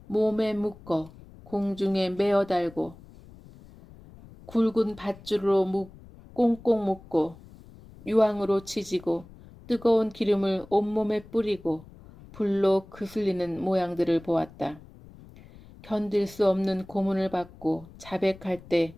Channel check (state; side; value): noise; left; rumble, 21 dB below the sound